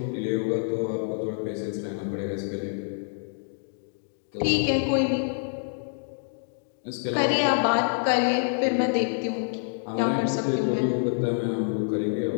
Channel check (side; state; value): right; silent; digital silence